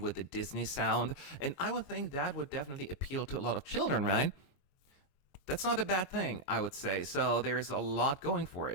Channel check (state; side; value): late; right; 22 ms